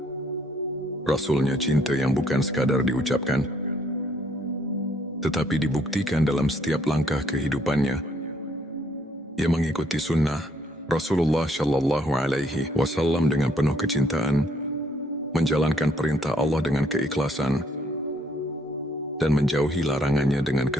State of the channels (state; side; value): normal; both; correlation 0.67